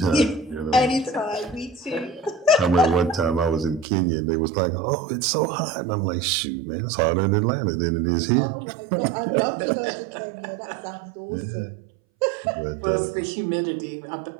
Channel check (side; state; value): left; drops out; at 3.9 s